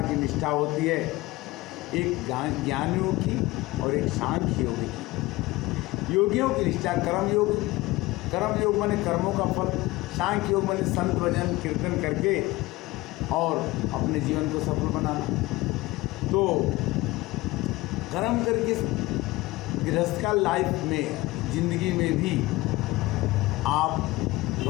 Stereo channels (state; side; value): quieter; right; 19.8 dB